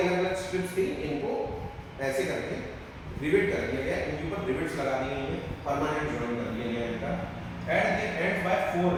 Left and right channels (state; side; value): identical; both; correlation 1.00